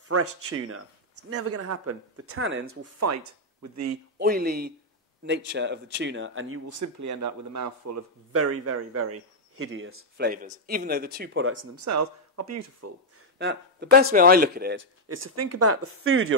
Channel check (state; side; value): normal; both; correlation -0.03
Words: tuna. It's never going to happen. The tannins will fight with the oily nature of the tuna, and you will simply end up with a mouthful of very, very, very hideous flavours, even though the two products in themselves are beautiful. Now, the best way I look at it is to think about the food